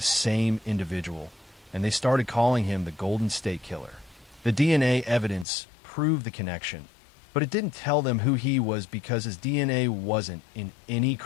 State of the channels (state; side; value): drops out; right; at 5.5 s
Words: same individual, and they started calling him the Golden State Killer. The DNA evidence proved the connection, but it didn't tell them who he was because his DNA wasn't in any